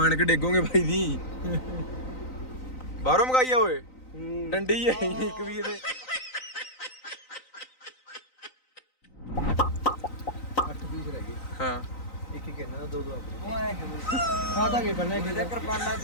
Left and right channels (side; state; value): right; late; 3.9 ms